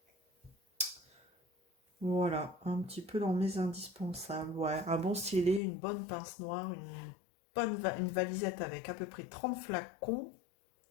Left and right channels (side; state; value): right; drops out; at 5.6 s